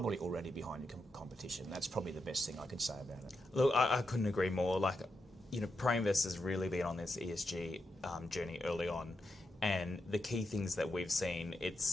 already behind your competition. That's probably the best thing I could say about it. Look, I couldn't agree more. ProInvest has really been on this ESG journey early on, and the key things that we've seen,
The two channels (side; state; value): both; normal; correlation 0.85